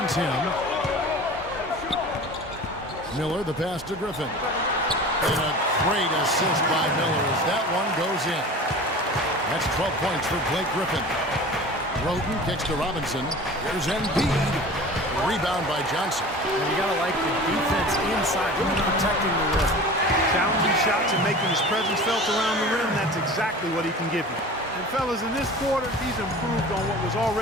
him. Miller, the pass to Griffin. And a great assist by Miller as that one goes in. That's 12 points for Blake Griffin. Roten kicks to Robinson. Here's Embiid. Rebound by Johnson. And you got to like the defense inside, really protecting the rim. Challenging shots and making his presence felt around the rim, that's exactly what he can give you. And fellas, in this quarter, he's improved on what was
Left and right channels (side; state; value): both; normal; correlation 0.38